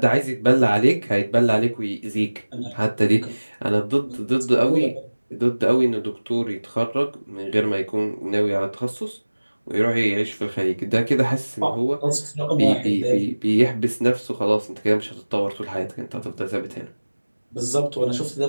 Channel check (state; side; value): inverted; both; correlation -1.00